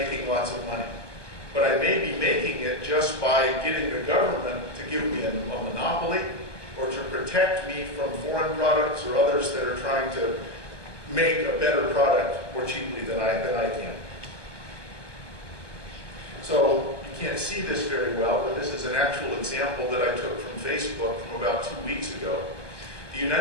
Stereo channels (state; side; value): late; right; 1.2 ms